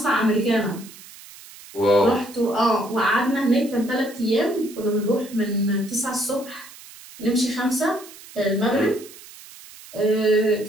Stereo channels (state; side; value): noise; right; hiss, 19 dB below the sound